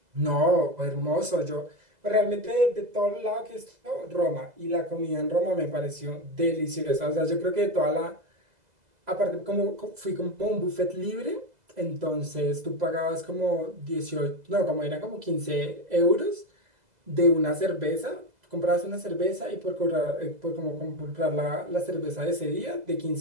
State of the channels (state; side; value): late; left; 2.0 ms